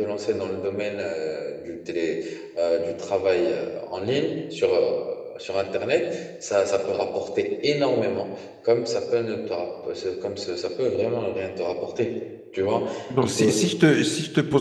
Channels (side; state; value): both; identical; correlation 1.00